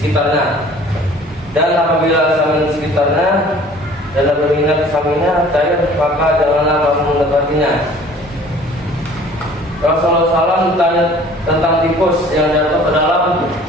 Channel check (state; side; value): normal; both; correlation 0.50